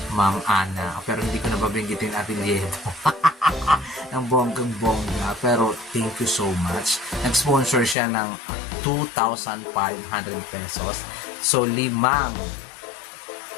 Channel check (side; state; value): right; drops out; at 8.0 s